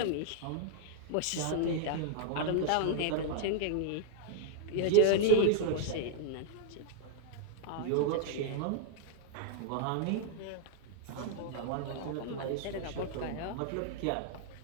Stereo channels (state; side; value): different; both; correlation 0.00